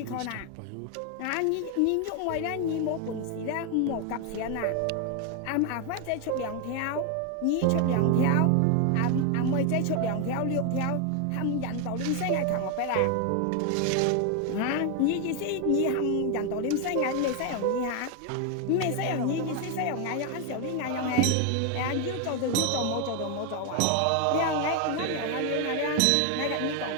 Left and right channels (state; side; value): different; both; correlation 0.01